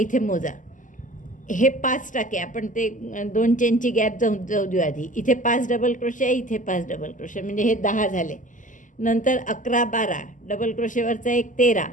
मोजा, हे 5 टाके आपण ते 2 चेनची गॅप जाऊ देऊ आधी. इथे 5 डबल क्रोशे, इथे 5 डबल क्रोशे, म्हणजे हे 10 झाले. नंतर 11 12 डबल क्रोशेवरचा एक 13,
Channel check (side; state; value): right; late; 0.37 ms